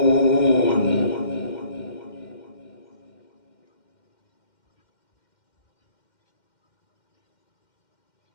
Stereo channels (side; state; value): right; late; 2.1 ms